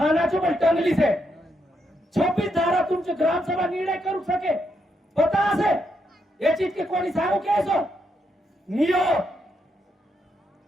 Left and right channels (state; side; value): normal; both; correlation 0.80